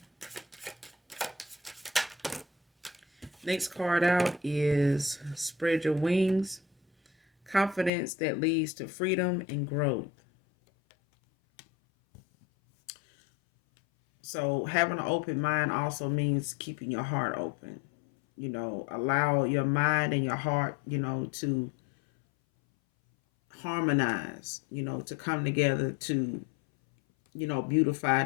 Next card out is Spread Your Wings. Confidence that leads to freedom and growth. So having an open mind also means keeping your heart open. You know, allow your mind and your heart, you know, to harmonize, you know, to come together to, you know, beautify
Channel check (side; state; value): right; drops out; at 7.9 s